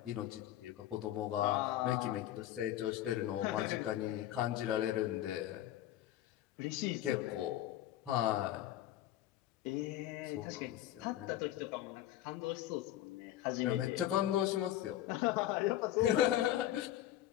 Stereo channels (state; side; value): quieter; right; 13.2 dB